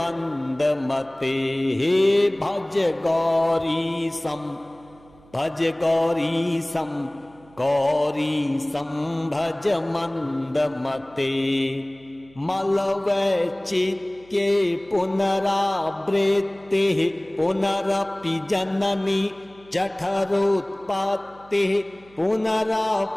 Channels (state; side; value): noise; right; hum, 27 dB below the sound